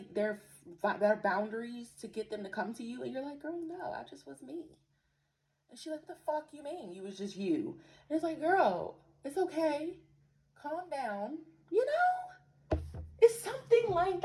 their boundaries to get them to come to you. And you're like, girl, no, I just was me. And she like, what the fuck you mean? You was just you. And it's like, girl, it's okay. Calm down. You know? It's something like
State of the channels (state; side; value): identical; both; correlation 1.00